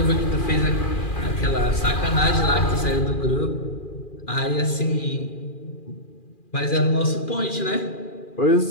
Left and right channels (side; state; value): right; late; 2.4 ms